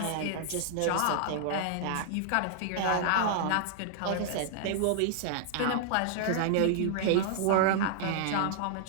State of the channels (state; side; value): different; both; correlation -0.01